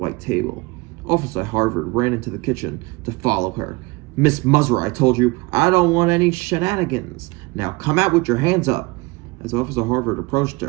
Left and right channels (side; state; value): left; quieter; 24.6 dB